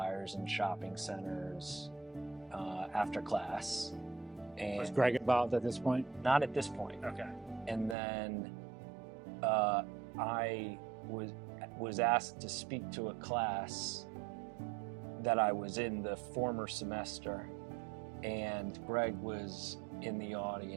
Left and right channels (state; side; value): drops out; left; at 8.0 s